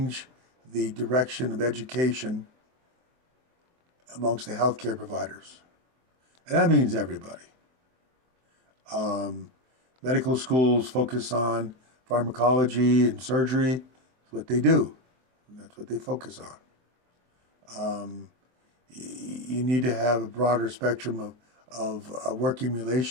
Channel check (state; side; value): late; left; 23 ms